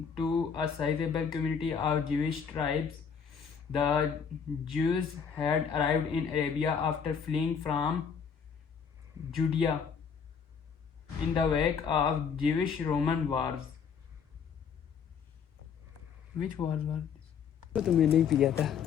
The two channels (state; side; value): quieter; right; 6.7 dB